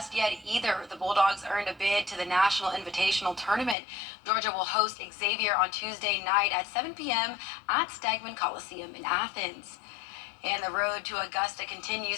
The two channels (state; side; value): drops out; right; at 3.8 s